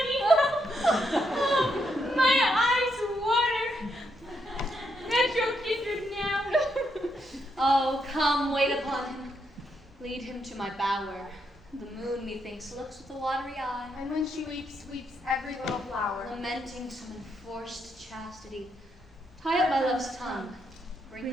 Oh, my eyes water. Metro kindred now. Oh, come, wait upon him. Lead him to my bower. The moon, methinks, looks with a watery eye. And when she weeps, weeps every little flower. Lamenting some enforced chastity. Tie up my love's tongue. Bring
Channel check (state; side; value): normal; both; correlation 0.78